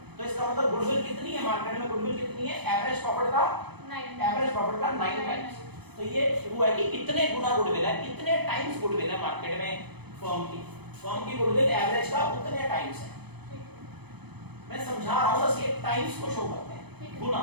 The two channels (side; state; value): left; late; 0.98 ms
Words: तो इसका मतलब गुडविल कितनी है मार्केट में? गुडविल कितनी है? एवरेज प्रॉफिट का 9 टाइम्स। तो ये हुआ कि कितने गुना गुडविल है, कितने टाइम्स गुडविल है मार्केट में फर्म की गुडविल एवरेज का उतने टाइम्स है। मैं समझा रहा हूं, बस ये टाइम्स को शो करते हैं, गुना,